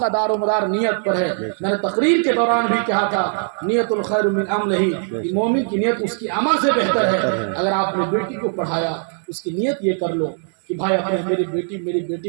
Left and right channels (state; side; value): silent; left; 62 dB below the other